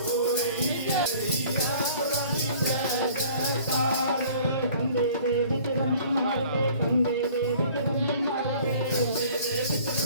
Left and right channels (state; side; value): inverted; both; correlation -0.51